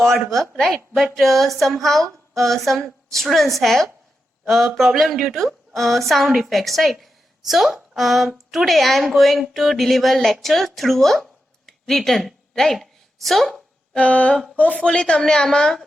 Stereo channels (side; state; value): both; normal; correlation 0.88